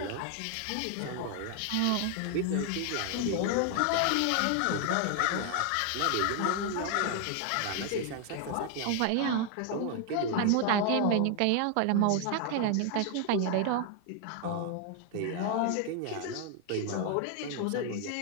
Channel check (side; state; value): both; different; correlation 0.00